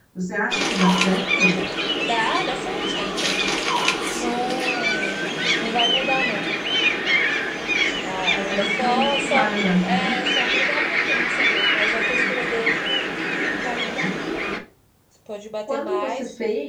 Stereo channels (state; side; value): identical; both; correlation 1.00